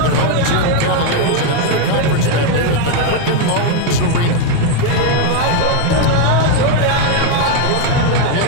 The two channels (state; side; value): different; both; correlation 0.01